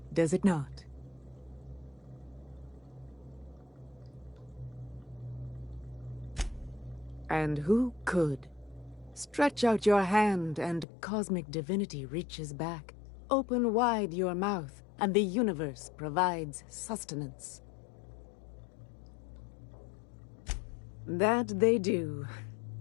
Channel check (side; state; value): right; drops out; at 10.9 s